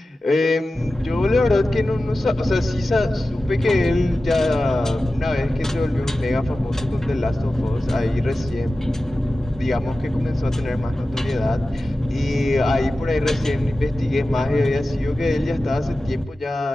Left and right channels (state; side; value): normal; both; correlation 0.95